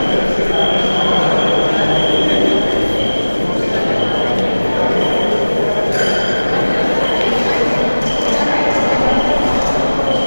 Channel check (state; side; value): inverted; both; correlation -1.00